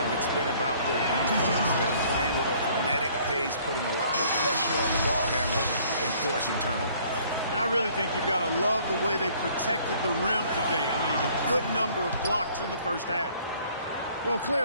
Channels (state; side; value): inverted; both; correlation -0.58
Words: And it's been about their defense. They're playing with a frenetic pace, putting a lot of pressure on the ball handlers and forcing turnover. And I really think you've got to love the way they protected the rim today. I mean, a good number of blocks in the first half. Well,